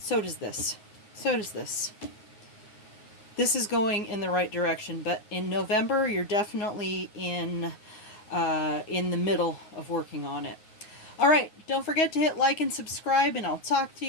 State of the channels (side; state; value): right; late; 9.4 ms